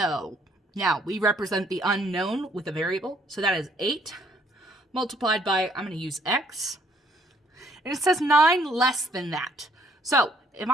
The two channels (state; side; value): normal; both; correlation 0.65